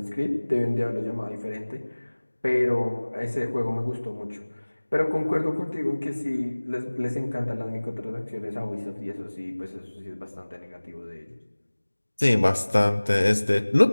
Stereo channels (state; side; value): inverted; both; correlation -1.00